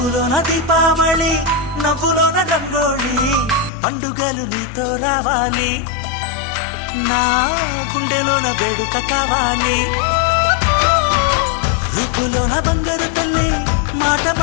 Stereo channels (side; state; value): right; drops out; at 3.7 s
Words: ముక్కులోన దీపావళి నవ్వులోన రంగోళి పండుగలు నీతో రావాలి నా గుండెలోన వేడుక కావాలి రుపులోన దొంగలు తల్లి మాట